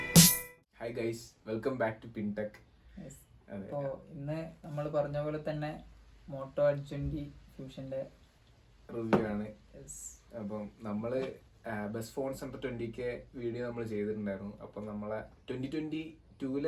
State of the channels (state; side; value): identical; both; correlation 1.00